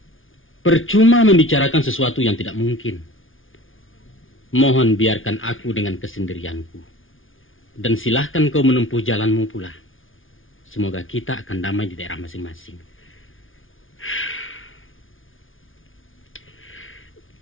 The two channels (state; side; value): late; right; 0.58 ms